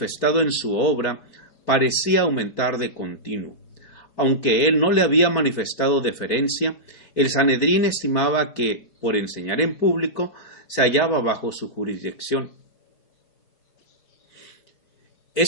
en su obra parecía aumentar de continuo. Aunque él no le había manifestado deferencia, el Sanedrín estimaba que, por enseñar en público, se hallaba bajo su jurisdicción.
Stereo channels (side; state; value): right; late; 4.5 ms